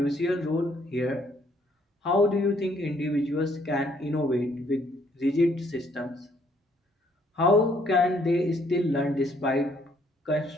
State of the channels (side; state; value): both; normal; correlation 0.66